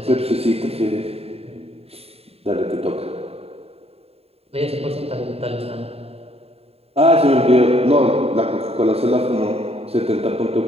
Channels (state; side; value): late; left; 0.29 ms